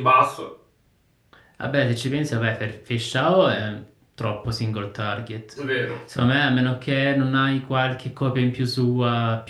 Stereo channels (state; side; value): identical; both; correlation 1.00